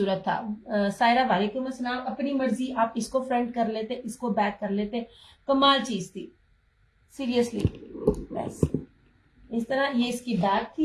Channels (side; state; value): both; identical; correlation 1.00